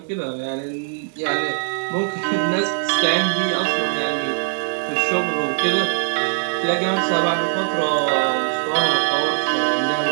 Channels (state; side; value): silent; left; digital silence